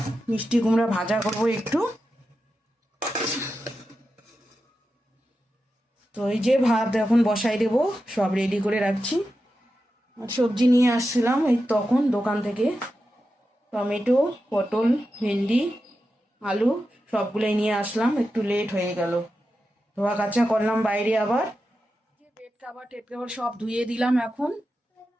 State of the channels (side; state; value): both; normal; correlation 0.90